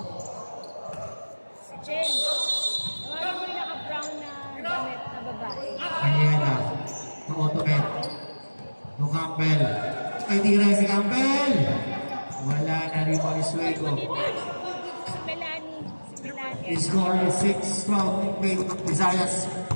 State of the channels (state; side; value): inverted; both; correlation -1.00